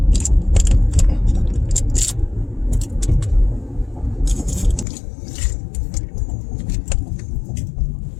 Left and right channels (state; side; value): drops out; right; at 4.9 s